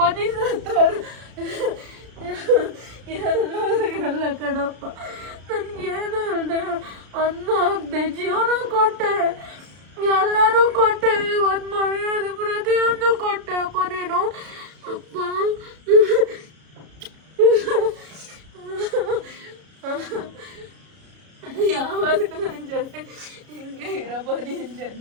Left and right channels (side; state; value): left; late; 33 ms